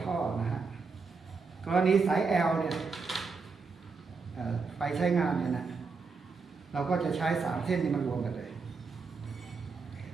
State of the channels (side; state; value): left; quieter; 4.7 dB